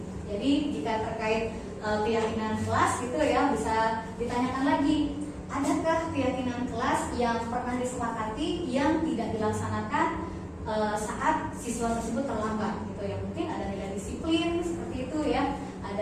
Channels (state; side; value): identical; both; correlation 1.00